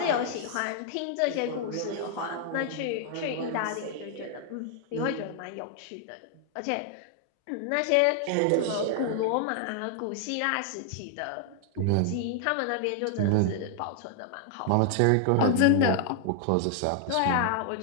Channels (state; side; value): different; both; correlation 0.00